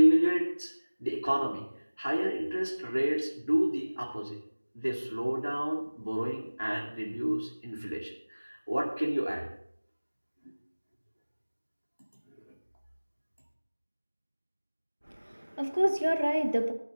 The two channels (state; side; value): inverted; both; correlation -1.00